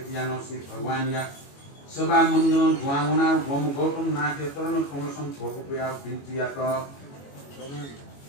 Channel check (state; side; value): late; right; 22 ms